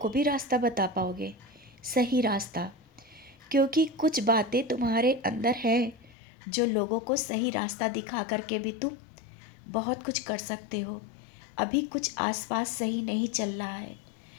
भी रास्ता बता पाओगे, सही रास्ता। क्योंकि कुछ बातें तुम्हारे अंदर हैं जो लोगों को सही रास्ता दिखा करके भी तुम बहुत कुछ कर सकते हो। अभी कुछ आसपास सही नहीं चल रहा है,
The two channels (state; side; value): drops out; right; at 6.2 s